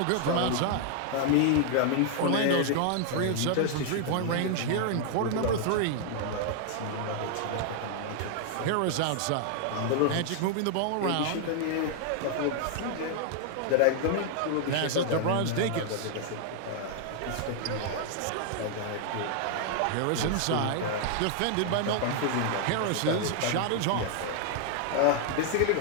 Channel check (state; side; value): different; both; correlation 0.00